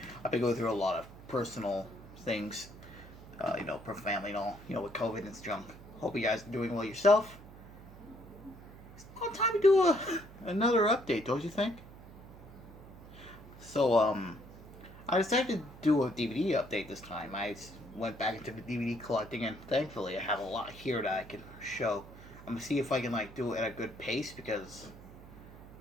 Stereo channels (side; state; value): right; noise; hum, 17 dB below the sound